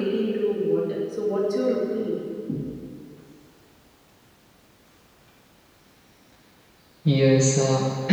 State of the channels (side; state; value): both; identical; correlation 1.00